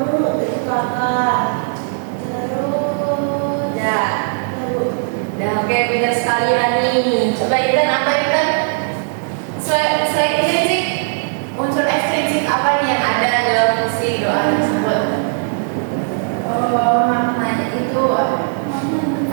itu kakak. Terus Oke, beda sekali Rani. Coba Intan, apa Intan? Selain intrinsik, unsur ekstrinsik apa nih yang ada dalam puisi doa tersebut? maknanya itu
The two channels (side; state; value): left; silent; digital silence